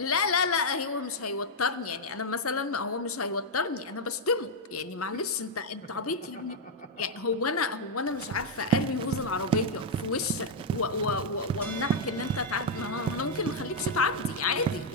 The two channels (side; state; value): both; normal; correlation -0.01